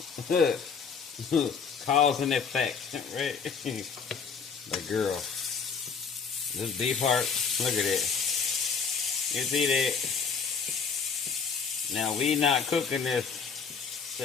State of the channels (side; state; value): right; quieter; 5.8 dB